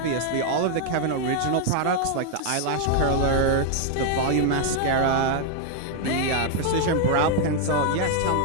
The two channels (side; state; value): both; different; correlation 0.00